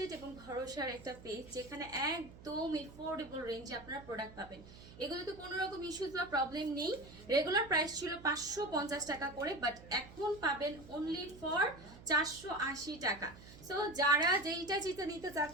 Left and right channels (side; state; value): right; noise; hum, 18 dB below the sound